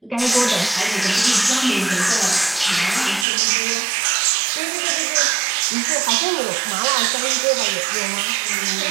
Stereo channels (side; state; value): left; drops out; at 3.2 s